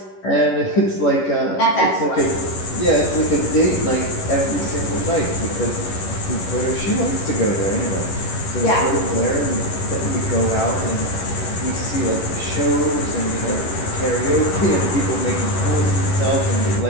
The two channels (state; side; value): late; right; 11 ms